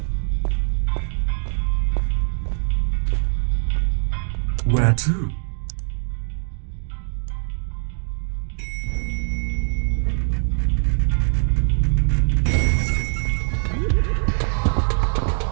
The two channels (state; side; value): silent; left; 64 dB below the other